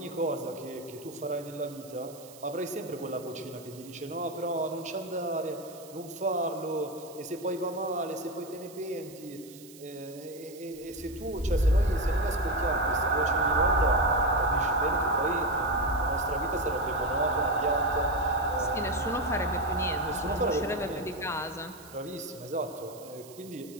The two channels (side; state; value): right; noise; hiss, 20 dB below the sound